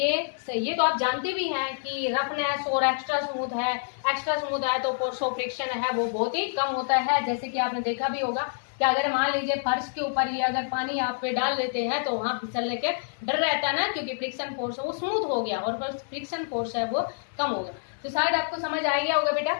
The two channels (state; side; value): silent; right; 60 dB below the other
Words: तो आप जानते भी हैं कि रफनेस और एक्स्ट्रा स्मूथ है। एक्स्ट्रा स्मूथ है तो फोर्स ऑफ फ्रिक्शन है वो बहुत ही कम होता है। जैसे कि आपने देखा भी होगा कि अगर मान लीजिए फर्श के ऊपर ही अगर पानी आप पे डाल देते हैं तो वहां फिसलने के डर रहता है ना, क्योंकि फ्रिक्शन फोर्स वो स्मूथ हो गया और फ्रिक्शन फोर्स है वो कम हो गया। तो शायद आपको समझ आ गया होगा बेटा।